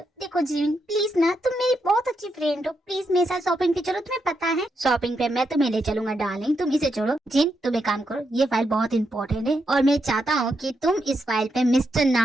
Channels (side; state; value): both; normal; correlation 0.82